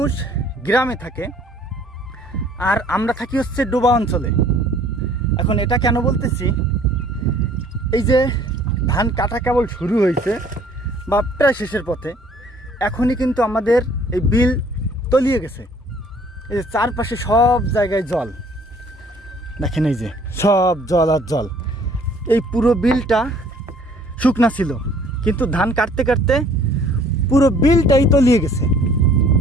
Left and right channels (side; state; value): both; normal; correlation 0.56